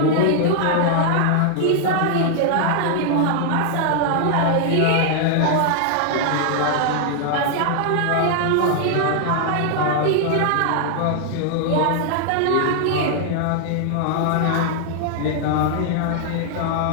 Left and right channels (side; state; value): both; different; correlation 0.00